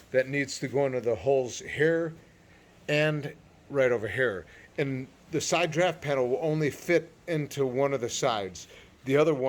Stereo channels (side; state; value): both; identical; correlation 1.00